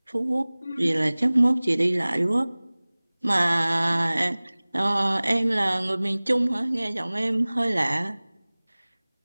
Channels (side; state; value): both; inverted; correlation -1.00